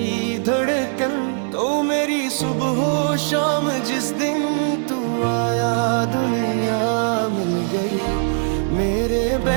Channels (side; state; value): left; silent; 64 dB below the other